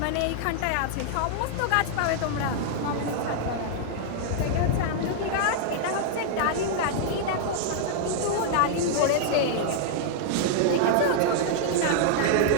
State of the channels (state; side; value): different; both; correlation -0.01